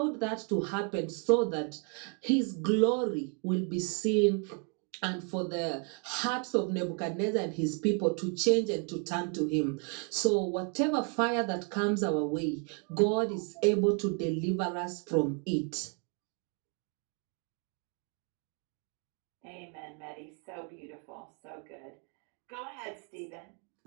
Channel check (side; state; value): left; quieter; 38.7 dB